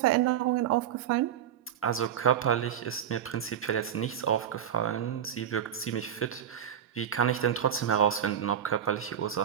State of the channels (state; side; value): quieter; left; 9.4 dB